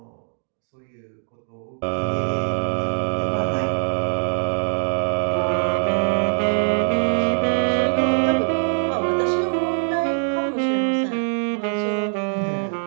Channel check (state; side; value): silent; left; digital silence